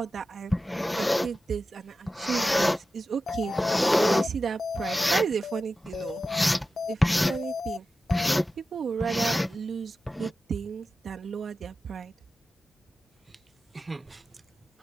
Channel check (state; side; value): normal; both; correlation 0.93